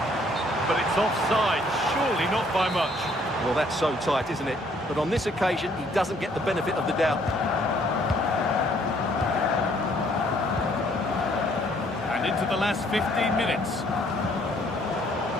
But it's offside, surely not by much. Well, that's so tight, isn't it? But on this occasion, he doesn't get the benefit of the doubt. And into the last 15 minutes.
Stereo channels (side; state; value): both; normal; correlation 0.63